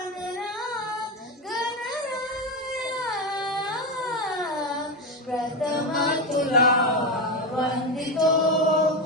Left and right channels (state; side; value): normal; both; correlation 0.14